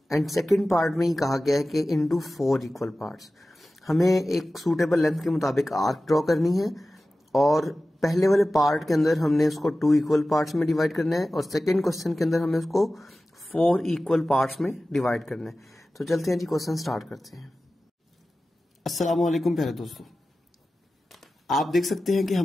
and second part में ही कहा गया है कि इनटू 4 इक्वल पार्ट्स। हमें एक सूटेबल लेंथ के मुताबिक आर्क ड्रॉ करनी है और पहले वाले पार्ट के अंदर हमने उसको 2 इक्वल पार्ट्स में डिवाइड करना है और सेकेंड क्वेश्चन के अंदर हमें उसको 4 इक्वल पार्ट्स में डिवाइड करना है। तो चलते हैं जी, क्वेश्चन स्टार्ट करते हैं। अस्सलाम वालेकुम प्यारे दोस्तों, आप देख सकते हैं कि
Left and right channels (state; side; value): normal; both; correlation 0.95